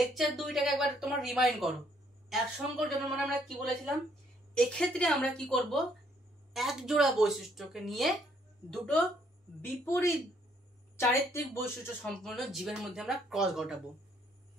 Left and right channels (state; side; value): normal; both; correlation 0.68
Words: 2টাকে একবার তোমরা রিমাইন্ড করো। এক সংকর জনন মানে আমরা কি বলেছিলাম? এক্ষেত্রে আমরা কি করব, এক জোড়া বৈশিষ্ট্যকে নিয়ে দুটো বিপরীত চারিত্রিক বৈশিষ্ট্য সম্পন্ন জীবের মধ্যে আমরা ক্রস ঘটাবো।